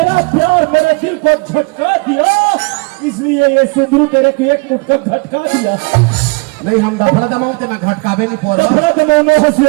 प्यार मेरे दिल को झटका दिया, इसलिए ये सुंदरू तेरे को एक मुटका झटका दिया। नहीं हम दफड़ा दमाओ ते मैं घटकावे नहीं पोरवा। दफड़ा दमाओ न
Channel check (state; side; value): quieter; left; 30.0 dB